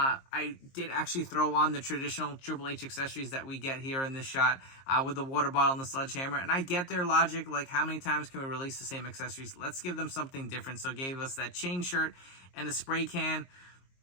did actually throw on the traditional Triple H accessories that we get here in this shot with the water bottle and the sledgehammer. And I get their logic, like how many times can we release the same accessories? Let's give them something different. So gave us that chain shirt and a spray can.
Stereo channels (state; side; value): late; right; 22 ms